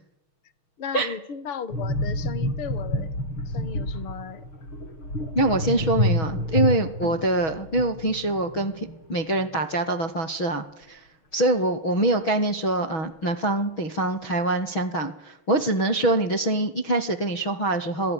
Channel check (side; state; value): right; late; 6.2 ms